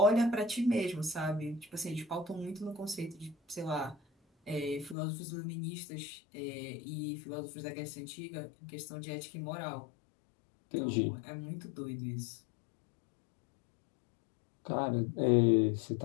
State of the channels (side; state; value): right; drops out; at 5.0 s